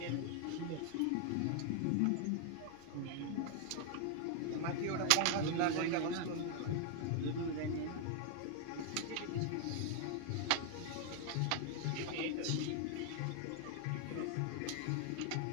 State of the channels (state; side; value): different; both; correlation 0.00